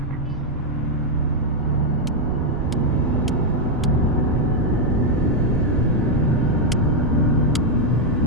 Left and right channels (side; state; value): both; normal; correlation 0.00